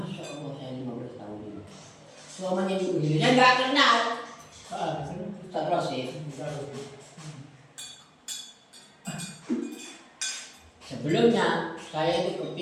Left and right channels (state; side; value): identical; both; correlation 1.00